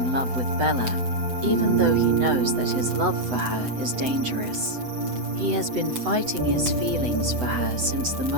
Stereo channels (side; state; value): left; late; 8.0 ms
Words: love with Bella, even though he knows that his love for her is dangerous. He has been fighting his feelings for her since the